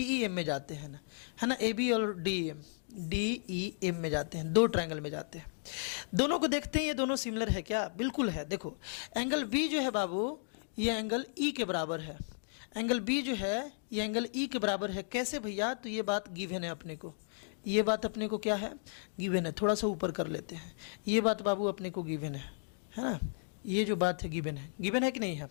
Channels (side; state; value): right; silent; digital silence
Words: ई एम में जाते हैं ना, है ना, ए बी और डी ई एम में जाते हैं, दो ट्रायंगल में जाते हैं। दोनों को देखते हैं ये दोनों सिमिलर है क्या? बिल्कुल है। देखो एंगल बी जो है बाबू ये एंगल ई के बराबर है, एंगल बी जो है ये एंगल ई के बराबर है। कैसे भैया? तो ये बात गिवन है अपने को, ये बात अपने को क्या है, गिवन है। थोड़ा सा ऊपर कर लेते हैं, ये बात बाबू अपने को गिवन है ना, ये जो बात है गिवन है कि नहीं है?